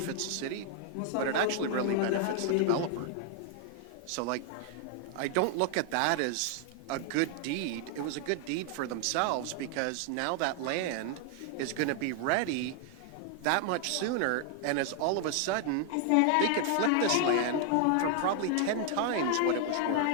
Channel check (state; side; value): different; both; correlation 0.00